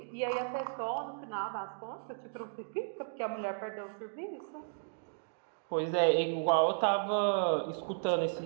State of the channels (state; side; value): silent; left; digital silence